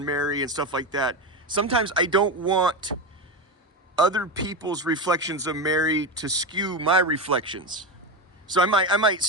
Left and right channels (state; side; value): normal; both; correlation 0.17